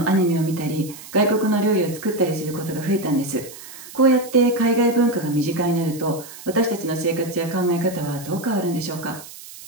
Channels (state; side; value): noise; right; hiss, 16 dB below the sound